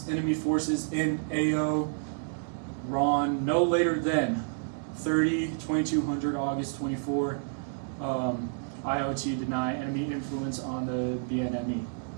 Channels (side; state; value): left; silent; digital silence